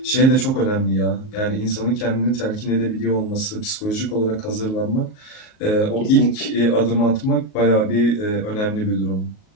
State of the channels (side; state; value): right; late; 38 ms